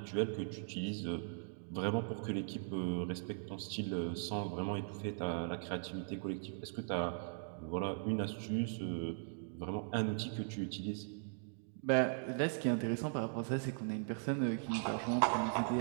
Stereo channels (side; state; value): left; silent; digital silence